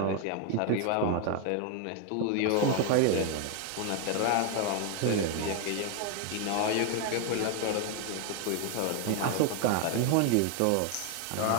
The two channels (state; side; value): different; both; correlation 0.01